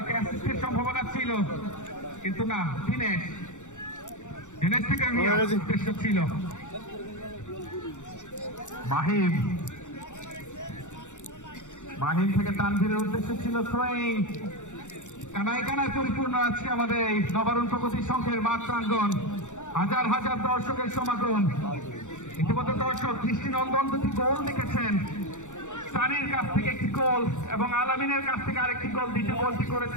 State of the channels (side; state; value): right; late; 0.85 ms